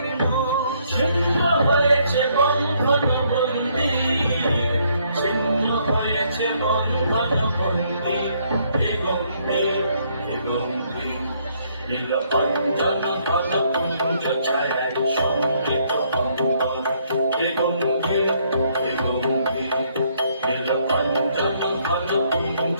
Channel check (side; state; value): both; inverted; correlation -0.69